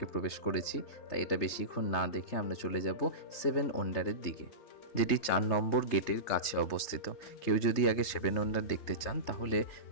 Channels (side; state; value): right; late; 3.3 ms